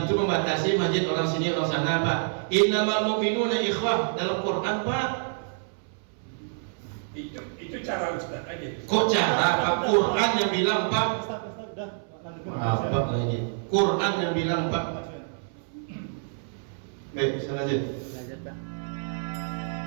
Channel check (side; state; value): left; silent; 60 dB below the other